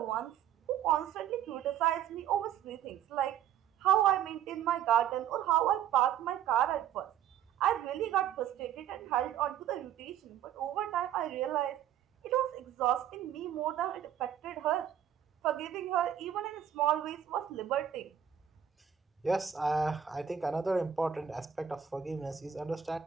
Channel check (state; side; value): quieter; left; 9.6 dB